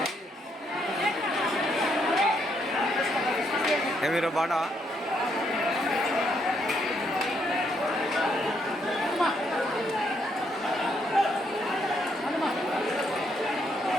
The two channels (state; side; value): normal; both; correlation 0.74